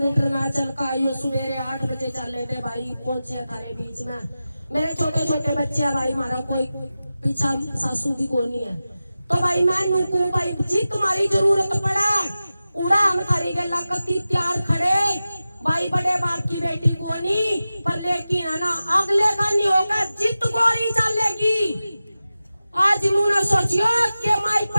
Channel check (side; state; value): both; inverted; correlation -0.94